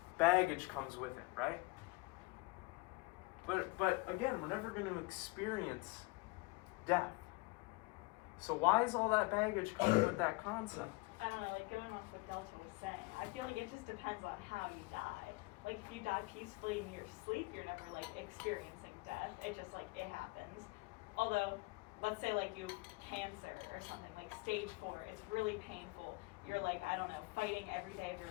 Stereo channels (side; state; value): right; quieter; 25.4 dB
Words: baggage comes with it, right? But again, we're never going to experience death. So why is all that baggage coming with that concept? I don't know, going off what Delton was saying, I feel like it just depends on how you die. If you die peacefully in your sleep, you're never experiencing death. It just it happens. Although, let's say you have cancer or something, stage 4, it's really painful. You're I don't know, fighting every day of your